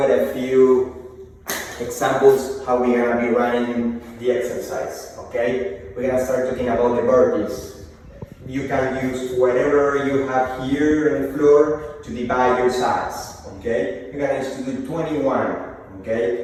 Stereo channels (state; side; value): identical; both; correlation 1.00